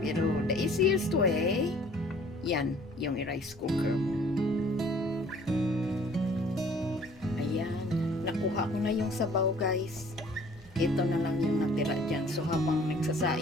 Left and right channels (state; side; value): noise; right; hum, 25 dB below the sound